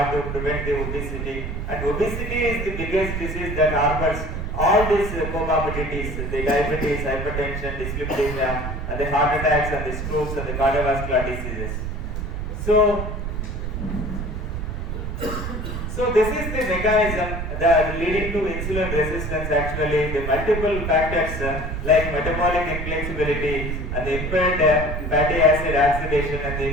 to prevent the obesity. And obesity is the biggest disease that harbors all these comorbidities, the diabetes, hypertension, dyslipidemia, and the heart attacks and the strokes and the cardiovascular diseases. So this is the mechanism that leading to insulin resistance. Actually, the multiple factors like metabolic inflexibility and the impaired fatty acid oxidation and the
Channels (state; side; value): noise; right; rumble, 4 dB below the sound